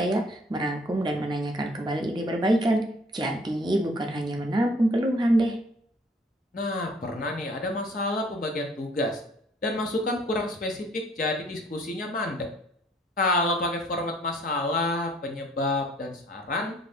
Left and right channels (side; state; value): both; normal; correlation 0.58